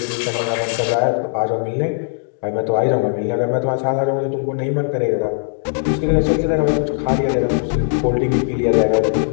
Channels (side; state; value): right; silent; digital silence